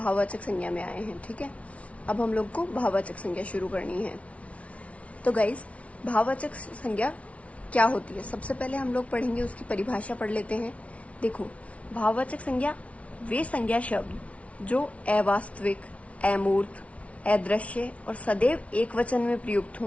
संज्ञा में आए हैं। ठीक है, अब हम लोग को भाववाचक संज्ञा शुरू करनी है। तो गाइस, भाववाचक संज्ञा क्या होती है, सबसे पहले हम लोग पढ़ेंगे, उसकी परिभाषा पढ़ लेते हैं। देखो, भाववाचक संज्ञा वे संज्ञा शब्द जो अवास्तविक, अमूर्त, अदृश्य और सदैव एक वचन में प्रयुक्त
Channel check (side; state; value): right; late; 0.064 ms